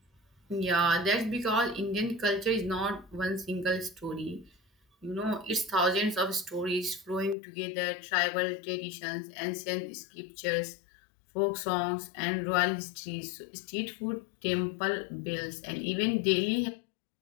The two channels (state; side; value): drops out; right; at 7.4 s